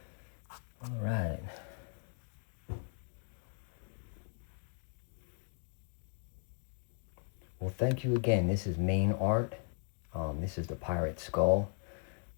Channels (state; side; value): silent; right; 53 dB below the other